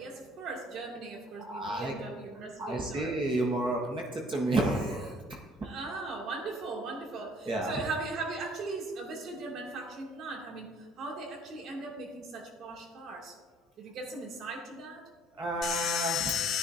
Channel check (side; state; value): both; normal; correlation 0.58